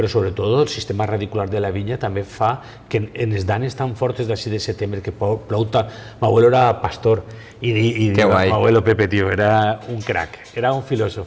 sobretot el sistema radicular de la vinya també fa que en les danes tan fortes d'ací de setembre que plou tant. M'abuelo era pastor i m'abuelo Pepe, tío, era un crack, era un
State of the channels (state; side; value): identical; both; correlation 1.00